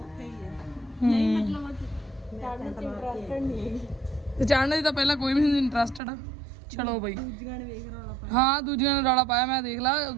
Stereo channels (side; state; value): left; drops out; at 6.0 s